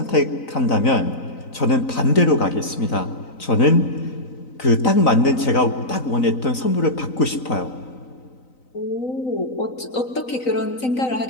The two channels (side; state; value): right; late; 3.9 ms